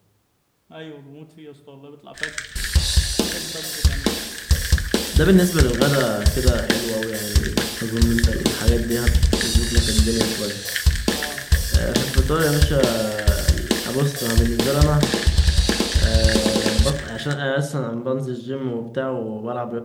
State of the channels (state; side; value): identical; both; correlation 1.00